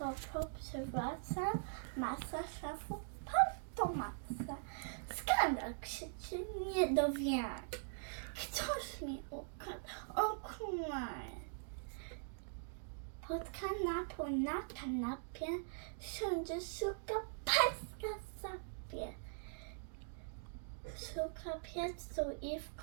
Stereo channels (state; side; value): silent; left; digital silence